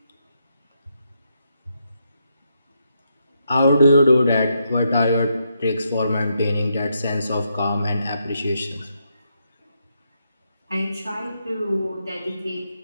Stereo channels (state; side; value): inverted; both; correlation -0.80